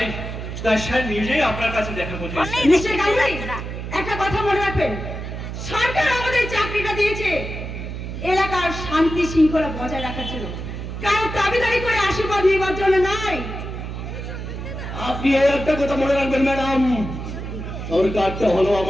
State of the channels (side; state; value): right; noise; hum, 7 dB below the sound